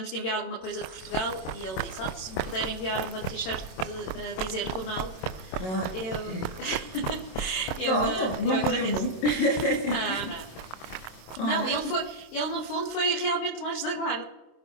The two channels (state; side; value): late; right; 27 ms